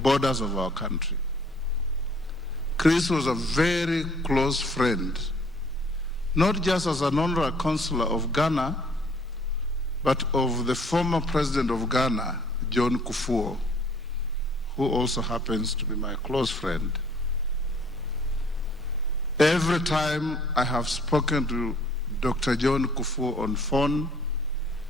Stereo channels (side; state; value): both; normal; correlation 0.58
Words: of our country. Chris was a very close friend, not just as an honorary consular of Ghana, but of the former president of Ghana, John Kufuor, who also happens to be my close friend. Every time I have spoken to Dr. John Kufuor on phone,